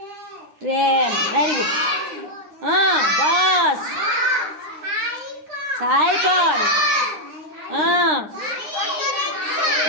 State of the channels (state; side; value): late; left; 9.8 ms